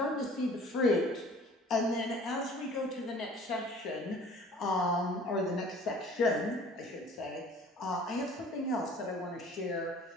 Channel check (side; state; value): both; normal; correlation 0.49